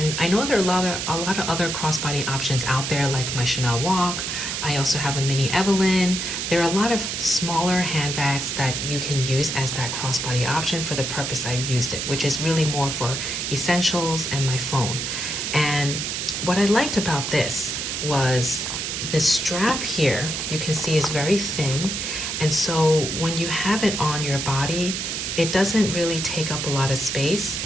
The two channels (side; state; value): right; noise; hiss, 3 dB below the sound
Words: I know there are a lot of other crossbody options out there, like my Chanel Walk. I also have a mini Evelyn. There are a lot of smaller handbags that you can use as that crossbody option for the purpose I've used it, which is really more for essentials and my phone. And what I liked about this was the strap here, you can see, is very thin. And so when you have it on your body, it doesn't really take up a lot of space,